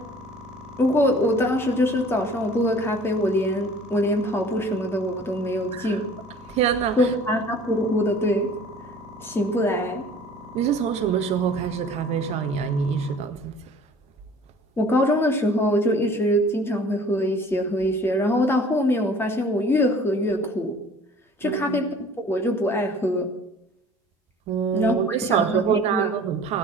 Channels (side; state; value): both; normal; correlation 0.48